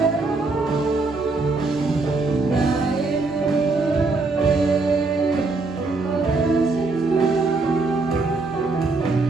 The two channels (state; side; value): quieter; left; 3.7 dB